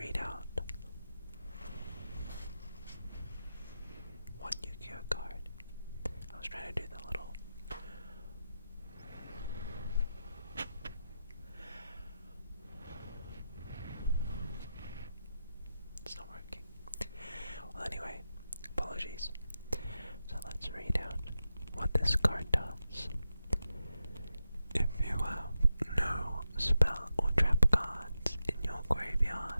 out one Yu-Gi-Oh card? I was trying to do the little... It's not working. Well, anyway, apologies. So let's read out what this card does. If you have no spell or trap cards in your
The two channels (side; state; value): both; inverted; correlation -0.89